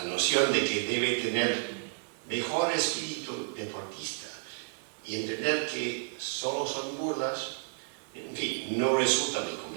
noción de que debe tener mejor espíritu deportista y entender que solo son burlas, en fin, no resulta muy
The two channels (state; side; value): silent; left; digital silence